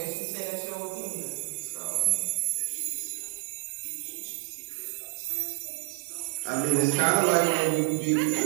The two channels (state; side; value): silent; left; digital silence